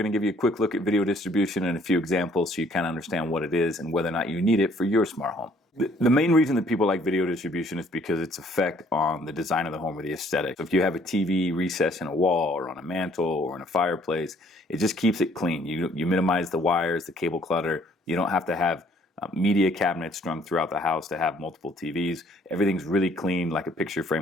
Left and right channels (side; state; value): both; normal; correlation 0.62